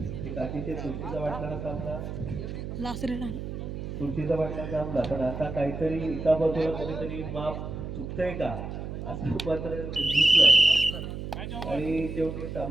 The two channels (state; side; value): noise; right; hum, 7 dB below the sound